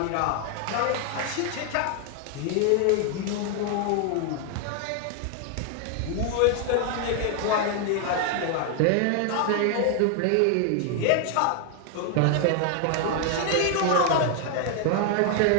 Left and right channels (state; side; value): different; both; correlation 0.00